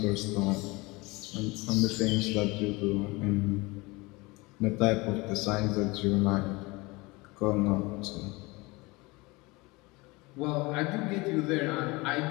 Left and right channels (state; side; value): quieter; right; 23.9 dB